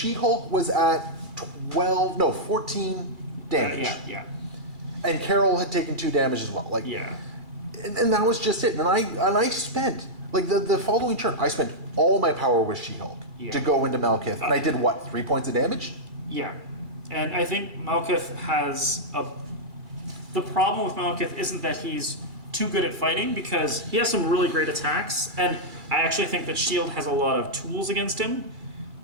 was at 14 damage. Yeah. And Carol had taken 2 damage as well. And that was just it. And I spent, the following turn, I spent all my power with She-Hulk to go into Malekith. And I did what, 3 points of damage? Yeah. And I think Malekith has the problem with Malekith isn't that he's too good at fighting, because he has some really great attacks. And I actually think that Shield has a lot of tools against him,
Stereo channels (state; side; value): late; left; 2.3 ms